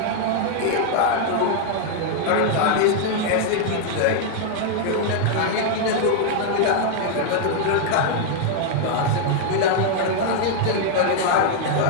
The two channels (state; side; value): different; both; correlation 0.00